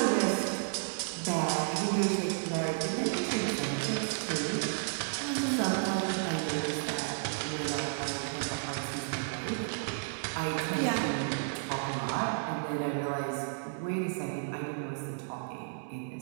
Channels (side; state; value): left; silent; 56 dB below the other